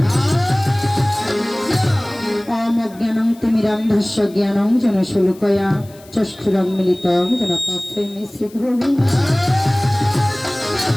ওম অজ্ঞানং তিমিরান্ধস্য জ্ঞানং যেন শুলকয়া চক্ষুরং মিলিতং যেন তস্मै শ্রী গুরবে।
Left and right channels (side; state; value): left; noise; hiss, 25 dB below the sound